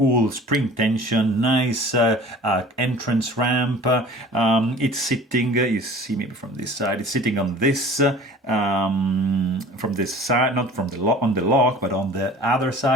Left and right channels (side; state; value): both; normal; correlation 0.45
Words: spring tension, nice entrance ramp. It's sitting, you see maybe from this side, it's sitting on this, from this side, not from the on the lock, but on the other